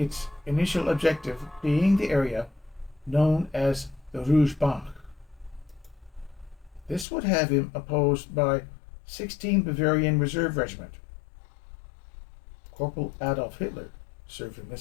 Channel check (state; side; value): drops out; right; at 7.1 s